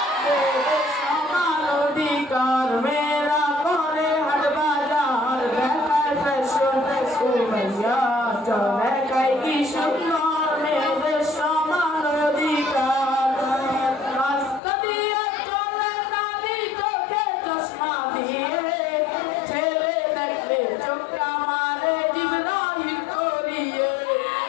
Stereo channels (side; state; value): right; drops out; at 14.6 s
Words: মেয়েদের সমান অধিকার, মেয়েরা করে হাট বাজার, দেখায় ফ্যাশন ও ভাইয়া চল দেখাই কি সুন্দর মেয়েদের সমান অধিকার। রাস্তা দিয়ে চলে নারী চোখে চশমা দিয়ে, ছেলে দেখলে চোখটা মারে জিভরা হিট করিয়ে।